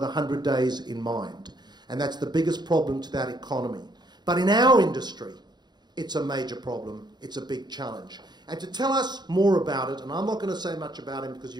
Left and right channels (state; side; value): late; left; 0.21 ms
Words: 100 days in mind. And that's the biggest problem to that economy. But in our industry, it's a major problem, it's a big challenge. And to tell us more about it, and I'm not going to say much about him because